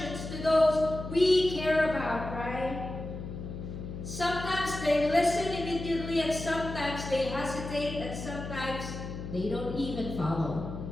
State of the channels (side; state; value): left; noise; hum, 8 dB below the sound